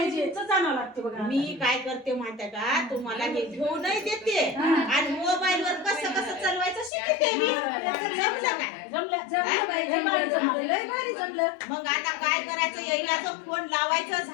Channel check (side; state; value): right; drops out; at 6.9 s